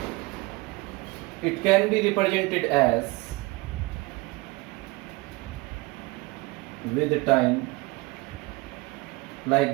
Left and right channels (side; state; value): left; quieter; 24.5 dB